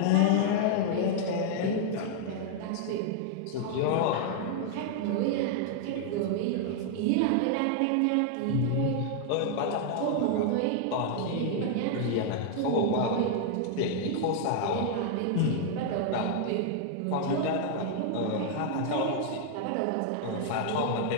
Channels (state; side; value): different; both; correlation 0.00